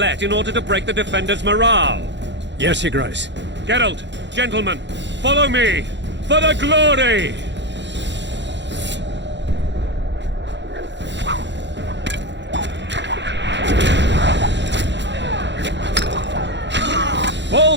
in order to break the defenders' morale. Yes, Your Grace. Geralt, gentlemen, follow me! For the glory!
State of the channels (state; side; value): late; left; 0.52 ms